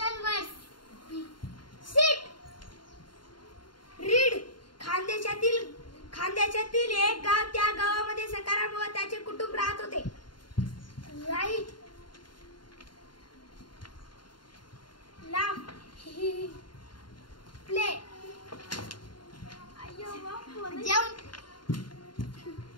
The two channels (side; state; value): right; late; 0.72 ms